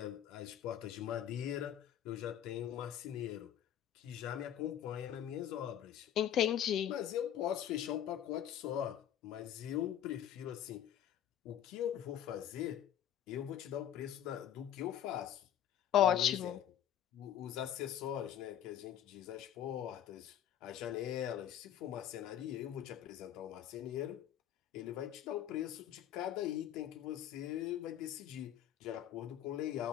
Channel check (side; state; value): right; quieter; 10.5 dB